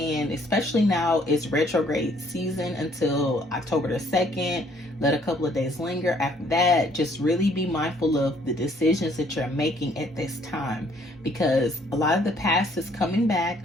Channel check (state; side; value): normal; both; correlation 0.63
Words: Especially now, it's retrograde season until October the 2nd. Let a couple of days linger. After that, just really be mindful of the decisions that you're making at this time, because a lot of the past is coming back.